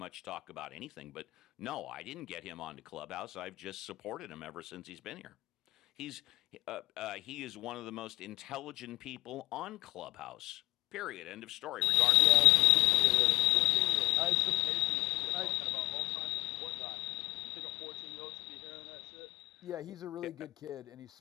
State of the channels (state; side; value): quieter; right; 22.0 dB